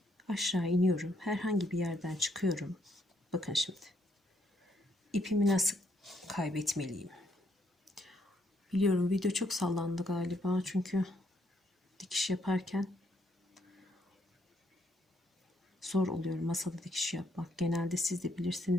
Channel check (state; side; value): normal; both; correlation 0.72